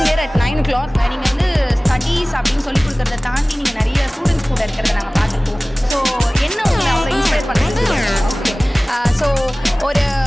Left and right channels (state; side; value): normal; both; correlation 0.98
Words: here at 9 o'clock. நீங்கள் வந்து ஸ்டடீஸ் அப்படின்னு சொல்லி கொடுக்குறத தாண்டி நீங்கள் நிறைய ஸ்டூடெண்ட்ஸ் கூட இருக்கிறத நாங்கள் பார்த்துருக்கோம். ஸோ என்ன உங்களை அவங்க இன்ஸ்பயர் பண்ணுறது? ஓகே, ஸோ ஒரு